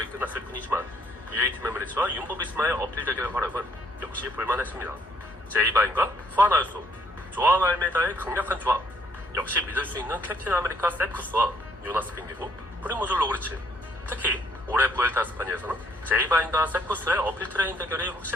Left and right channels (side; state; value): both; normal; correlation 0.67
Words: 끝났을 뿐이지만 UAE 팀 에미리츠와 윤보비스마의 어필 대결 활약은 역시 볼만했습니다. 제이바인과 후안 아유소, 조아 알메다의 강력한 조합, 역시 믿을 수 있는 캡틴 아메리카 세쿠스와 요나스 빙기고 프리모즈 로그리치. 특히 올해 부엘타 스파니아에서는 제이바인과 세쿠스의 어필 트레인 대결이